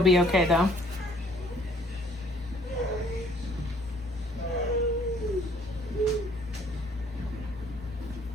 be okay though.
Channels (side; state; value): both; normal; correlation 0.60